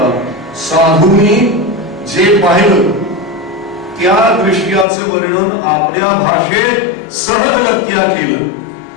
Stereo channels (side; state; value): right; drops out; at 4.9 s